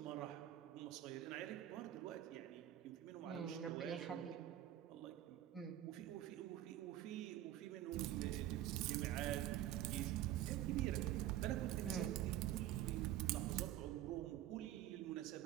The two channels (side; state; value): left; quieter; 12.8 dB